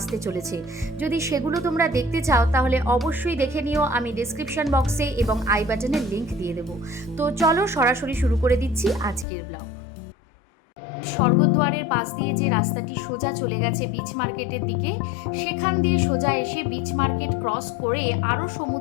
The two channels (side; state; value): right; drops out; at 9.2 s